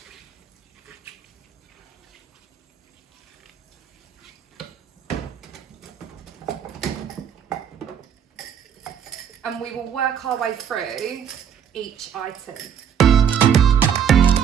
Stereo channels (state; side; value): quieter; left; 8.3 dB